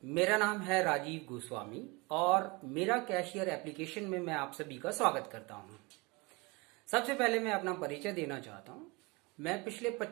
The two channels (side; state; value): left; quieter; 26.6 dB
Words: मेरा नाम है राजीव गोस्वामी और मेरा कैशियर एप्लीकेशन में मैं आप सभी का स्वागत करता हूं। सबसे पहले मैं अपना परिचय देना चाहता हूं। मैं पिछले